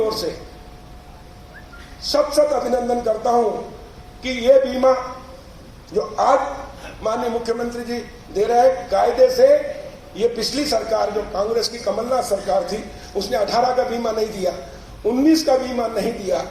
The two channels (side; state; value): both; identical; correlation 1.00